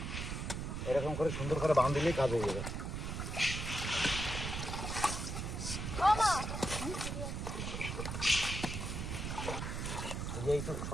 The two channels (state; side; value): noise; right; rumble, 4 dB below the sound